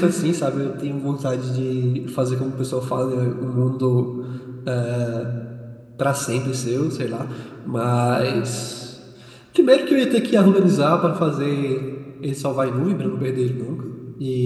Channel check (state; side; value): identical; both; correlation 1.00